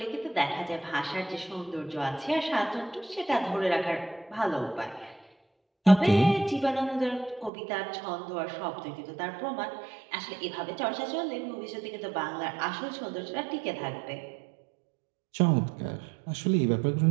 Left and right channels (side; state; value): left; drops out; at 7.5 s